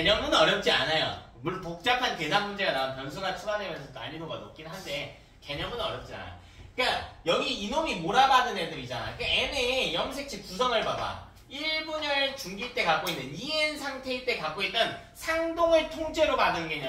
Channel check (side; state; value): both; identical; correlation 1.00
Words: 어렵지 않아요. 물론 복잡한 계산 문제가 나오면 변수가 추가되면서 난이도가 높긴 한데 개념은 어렵지 않아. 그러니까 여기 이놈이 몰아받은 애들이잖아. 그러니까 n의 염색체 구성을 봐봐. 1분열 중기 때 갖고 있는 2n 상태일 때 갖고 있던 상동을 통째로 받은